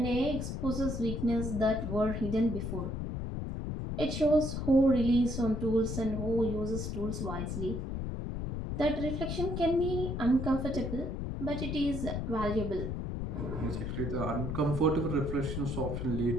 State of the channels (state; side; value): noise; left; rumble, 3 dB below the sound